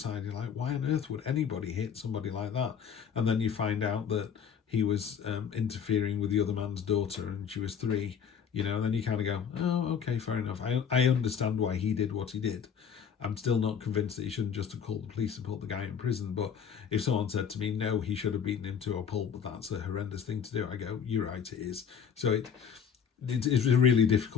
You're like, why on earth would anybody hit somebody like that? And then you find out that he was interfering with the other man's daughter, and she was 3. You know, and then you kind of go, oh, okay, fair enough. I understand why he did what he did. I'm still not convinced that he shouldn't just have called the police and put the guy in prison. But if someone said to me, no, he should have beaten him to a pulp, but that's a horrendous thing to do, I go, you're right, it is. So it's a really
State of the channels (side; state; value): right; quieter; 7.4 dB